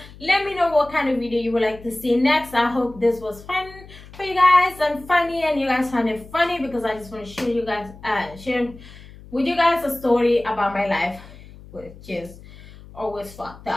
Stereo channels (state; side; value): noise; left; hum, 19 dB below the sound